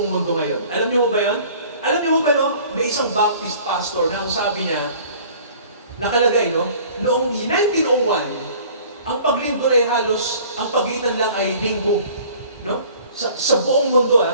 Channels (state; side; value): inverted; both; correlation -0.50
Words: mundo ngayon. Alam niyo mo ba yan? Alam niyo mo ba, no? May isang Baptist pastor na ang sabi niya, nakalagay, no? Noong 1901, ang paglindol ay halos, ang pagitan lang ay linggo. No? Sa buong mundo,